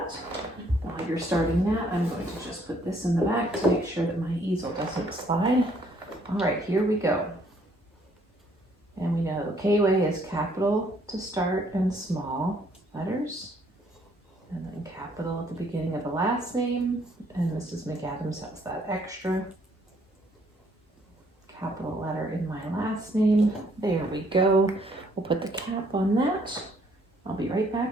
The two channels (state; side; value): normal; both; correlation 0.65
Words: While you're starting that, I'm going to just put this in the back to make sure that my easel doesn't slide. All right, here we go. And we know K-way is capital to start and small letters. And then capital at the beginning of the last name. And Mrs. McAdams has that extra capital letter in my last name. There we go. We'll put the cap on that. I'll be right back.